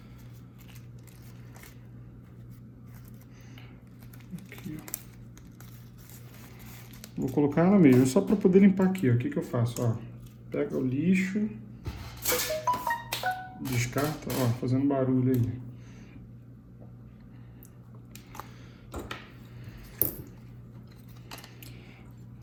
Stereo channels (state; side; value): identical; both; correlation 1.00